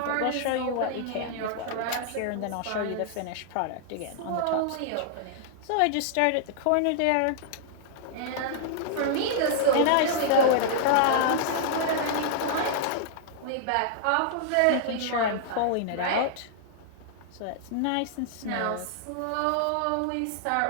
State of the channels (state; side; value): different; both; correlation -0.01